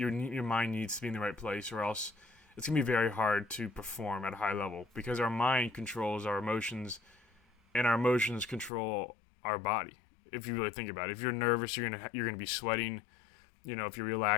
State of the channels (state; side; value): drops out; right; at 8.7 s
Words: mind needs to be in the right place, or else it's going to be very hard to perform at a high level, because our mind controls our emotions, and our emotions control our body. If you really think about it, if you're nervous, you're gonna be sweating. If you're